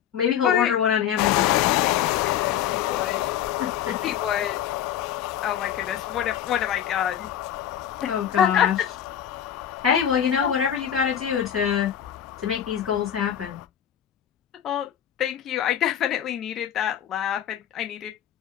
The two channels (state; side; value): quieter; right; 9.7 dB